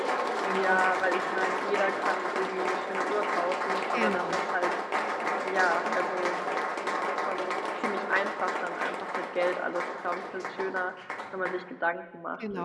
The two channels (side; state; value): both; identical; correlation 1.00